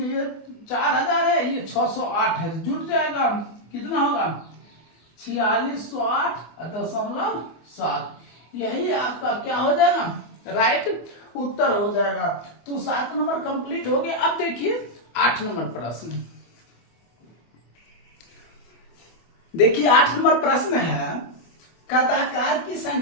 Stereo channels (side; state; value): right; late; 25 ms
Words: 4000 है, ये 608 है, जुट जाएगा, कितना होगा, 4608.7। यही आपका क्या हो जाएगा, राइट उत्तर हो जाएगा। तो 7 नंबर कंप्लीट हो गया। अब देखिए 8 नंबर प्रश्न, देखिए 8 नंबर प्रश्न है, कथाकार की